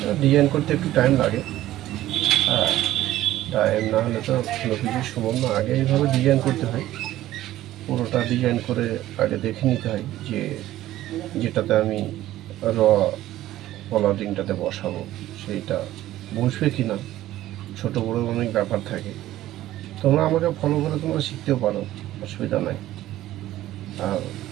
ডিজাইন করতে একটু টাইম লাগে। হ্যাঁ, টাইম না হলে তো কোনো কিছু সম্ভব না। আগে এইভাবে ডিজাইন করতে হয়, পুরোটা ডিজাইন করে আগে দেখে নিতে হয় যে যেটাতে আমি পলার রিংটাতে বসাবো সেইটা বসবে কি না। ছোটো বড়ো অনেক ব্যাপার থাকে। তোমরা আমাকে ফলো করে তোমরা শিখতেও পারো, অসুবিধা নাই। আর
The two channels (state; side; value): quieter; left; 14.5 dB